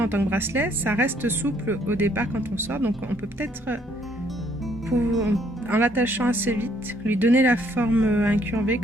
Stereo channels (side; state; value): both; normal; correlation 0.66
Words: en tant que bracelet, ça reste souple au départ quand on sort. Donc, on peut peut-être, en l'attachant assez vite, lui donner la forme incurvée